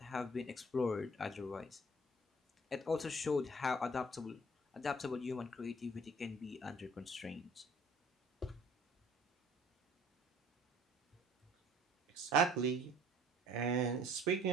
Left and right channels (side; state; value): both; normal; correlation 0.54